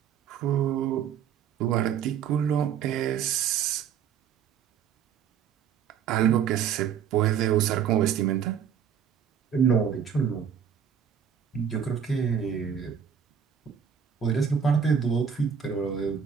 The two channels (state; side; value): quieter; left; 8.0 dB